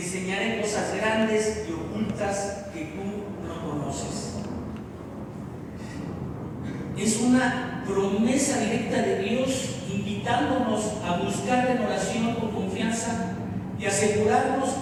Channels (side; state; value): both; identical; correlation 1.00